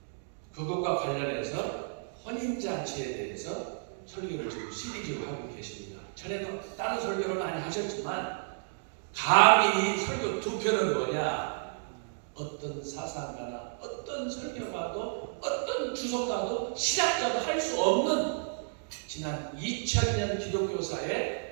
그것과 관련해서 혼인잔치에 대해서 설교를 지금 시리즈로 하고 계십니다. 전에도 다른 설교를 많이 하셨지만 감히 이 설교 두 편은 뭐냐? 어떤 사상가나 어떤 설교가도 어떤 주석가도 신학자도 할 수 없는 지난 2000년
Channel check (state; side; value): silent; left; digital silence